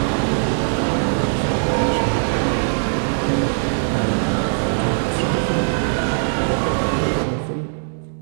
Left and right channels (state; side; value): silent; left; digital silence